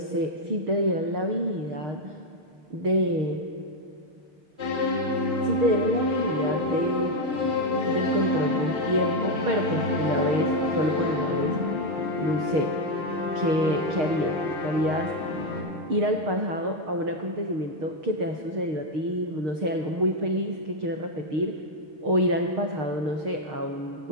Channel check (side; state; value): left; late; 6.5 ms